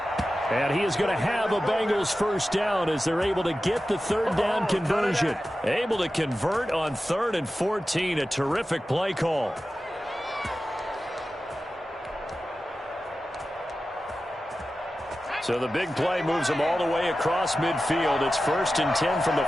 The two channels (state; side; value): normal; both; correlation 0.94